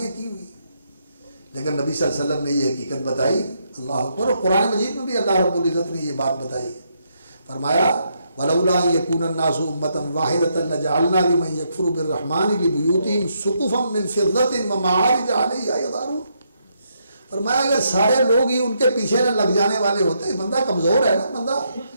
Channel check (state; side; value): inverted; both; correlation -0.77